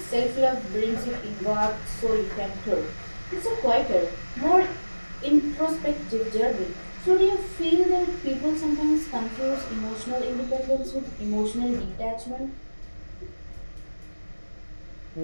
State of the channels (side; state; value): both; inverted; correlation -1.00